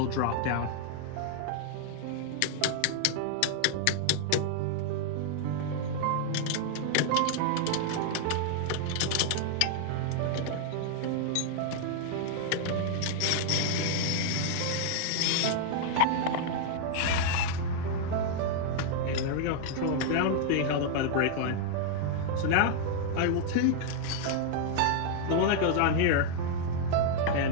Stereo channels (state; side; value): different; both; correlation 0.00